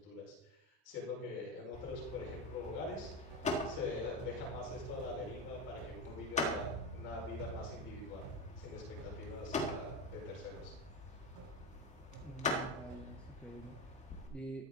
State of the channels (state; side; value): normal; both; correlation 0.17